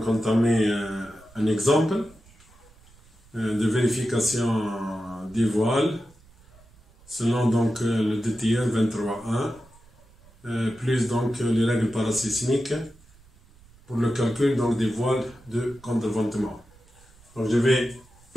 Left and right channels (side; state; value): right; noise; rumble, 27 dB below the sound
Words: entamer un exemple de vérification des voiles selon donc le DTR 23.1 plus donc les règles parasismiques pour le calcul donc des voiles de contreventement. Donc je vais